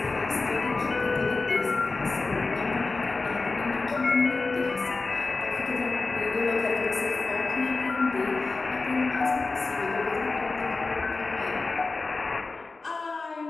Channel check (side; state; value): right; quieter; 3.7 dB